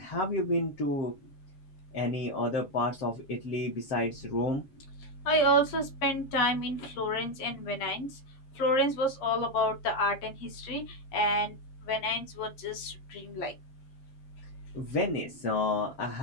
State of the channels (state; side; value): late; right; 7.4 ms